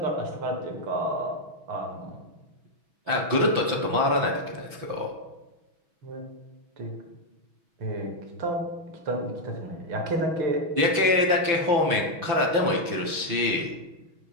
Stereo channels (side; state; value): left; late; 6.1 ms